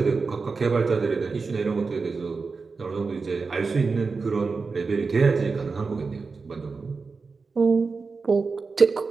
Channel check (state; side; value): quieter; left; 4.5 dB